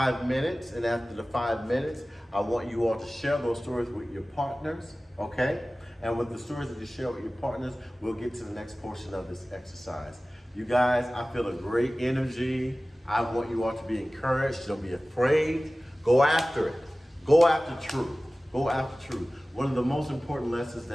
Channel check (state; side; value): normal; both; correlation 0.97